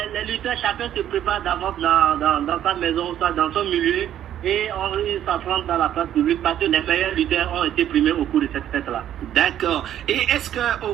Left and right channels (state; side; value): quieter; left; 11.1 dB